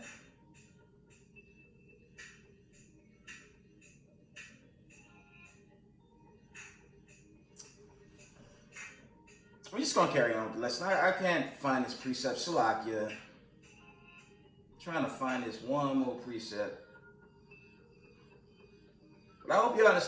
We're just gonna carry on with the lesson. I can't find this precept. Salakia. Trying to find this one more precept. But I hope you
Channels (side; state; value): both; identical; correlation 1.00